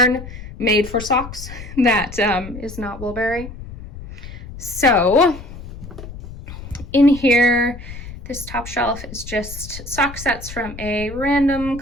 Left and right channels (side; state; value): left; noise; rumble, 12 dB below the sound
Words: made for socks that is not Woolberry. So in here, this top shelf is just sock sets from a random